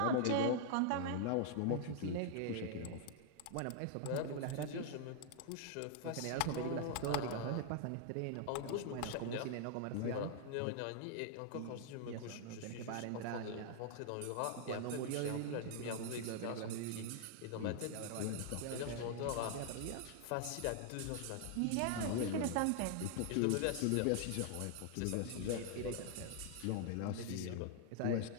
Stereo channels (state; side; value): different; both; correlation 0.00